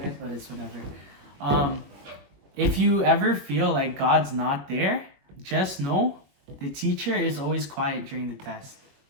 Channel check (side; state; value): left; late; 21 ms